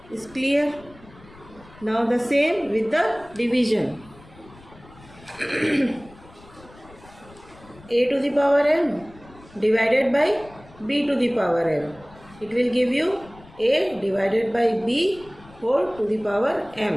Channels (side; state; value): left; noise; rumble, 23 dB below the sound